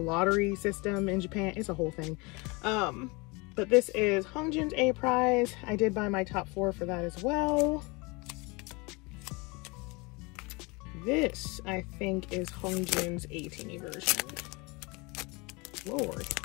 system in Japan. It's a whole thing. But this is Hongjoon's A prize. I did buy my top 4 for that as well. This, I think, is Hongjoon's 18E version. Lord,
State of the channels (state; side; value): quieter; right; 27.0 dB